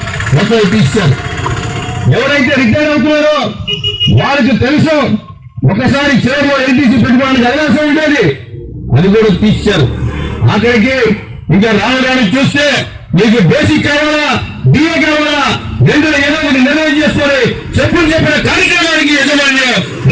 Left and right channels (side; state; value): both; identical; correlation 1.00